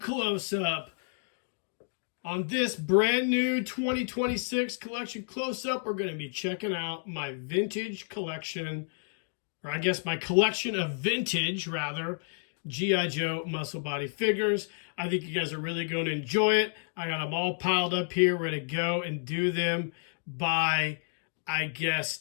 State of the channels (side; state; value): right; silent; digital silence